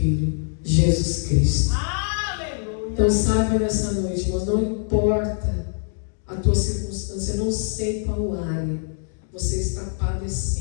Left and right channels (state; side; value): silent; right; 63 dB below the other